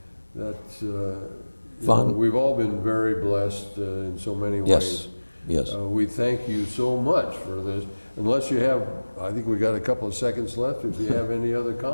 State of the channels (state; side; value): inverted; both; correlation -1.00